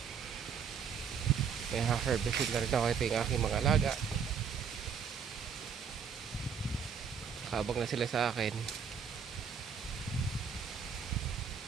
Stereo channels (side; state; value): left; quieter; 6.7 dB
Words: May ha-harvestin na rin ako. Ito yung aking mga alaga. Habang na sila sa akin.